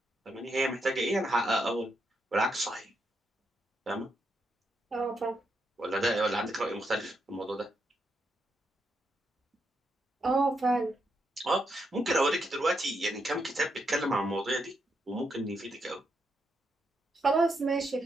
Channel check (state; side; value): normal; both; correlation 0.80